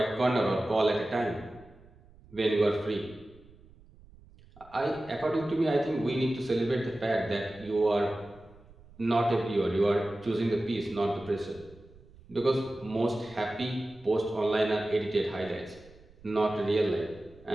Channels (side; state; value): right; noise; rumble, 24 dB below the sound